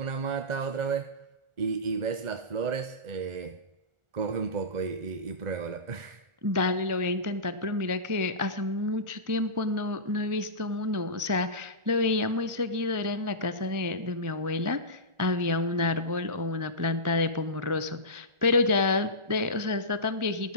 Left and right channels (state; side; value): late; left; 1.4 ms